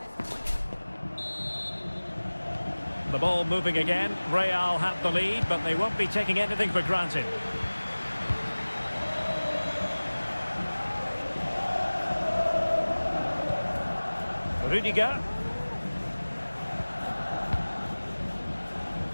The ball moving again. Real have the lead, but they won't be taking anything for granted. Rudiger.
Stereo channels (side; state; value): both; inverted; correlation -1.00